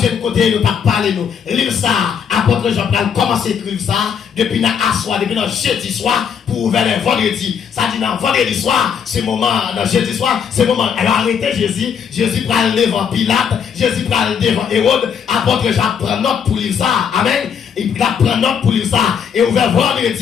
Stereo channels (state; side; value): quieter; right; 7.4 dB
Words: côté, nous pas parler nous. Livre ça, apôtre Jean-Paul commencé à écrire ça, depuis dans soir, depuis dans jeudi soir, pour vers le vendredi. Ça dit dans vendredi soir, c'est moment, dans jeudi soir, c'est moment. Elle a arrêté Jésus, Jésus prend le devant Pilate, Jésus prend le devant Hérode, apôtre Jean prend note pour lire ça. Amen. Il prend note pour lire ça. Et ouvert